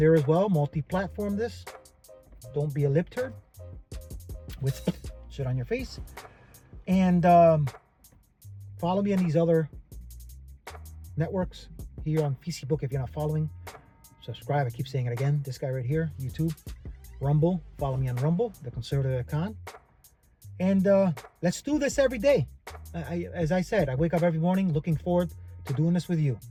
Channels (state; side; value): identical; both; correlation 1.00